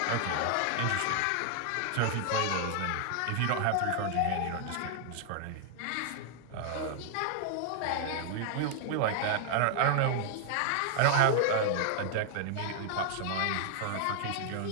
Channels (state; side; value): different; both; correlation 0.00